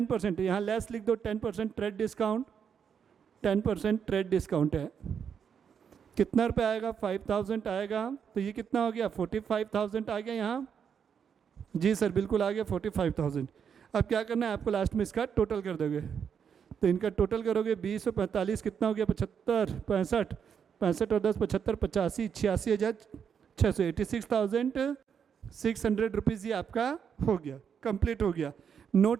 यहाँ लेस लिख दो 10% ट्रेड डिस्काउंट, 10% ट्रेड डिस्काउंट है। कितना रुपये आएगा, 5,000 आएगा। तो ये कितना हो गया, 45,000 आ गया यहाँ। जी सर बिल्कुल आ गया 45,000। अब क्या करना है आपको, लास्ट में इसका टोटल कर दोगे। तो इनका टोटल करोगे 20 और 45 कितना हो गया, 75, 65, 65 और 10 75, 85, 86,600, 86,600 रुपीज़ ये आपका हो गया, कंप्लीट हो गया।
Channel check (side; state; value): left; quieter; 7.4 dB